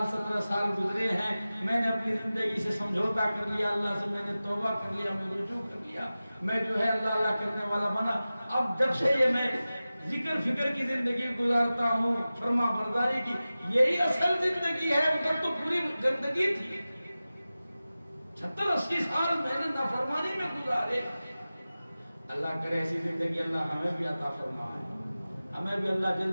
17 سال گزرے ہیں، میں نے اپنی زندگی سے سمجھوتا کر لیا، اللہ سے میں نے توبہ کر لیا، میں رجوع کر لیا، میں جو ہے اللہ کرنے والا بنا۔ اب جب سے یہ میں ذکر فکر کی زندگی گزارتا ہوں، فرما برداری کی، یہی اصل زندگی ہے، ادھر تو پوری گندگی تھی۔ 70-80 سال میں نے نافرمانی میں گزارے۔ اللہ کرے ایسی زندگی اللہ ہمیں بھی عطا فرمائے، ہمیں بھی اللہ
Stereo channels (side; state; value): both; inverted; correlation -0.96